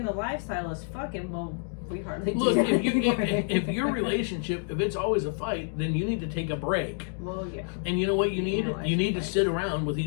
the lifestyle is fucking, well, we hardly do that anymore. if your relationship, if it's always a fight, then you need to take a break. Well, yeah. And you know what you need? You need to sit around with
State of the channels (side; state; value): right; silent; 59 dB below the other